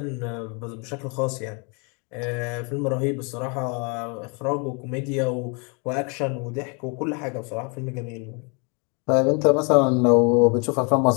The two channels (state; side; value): quieter; right; 34.2 dB